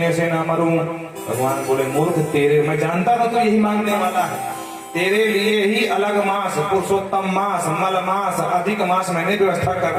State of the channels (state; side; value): identical; both; correlation 1.00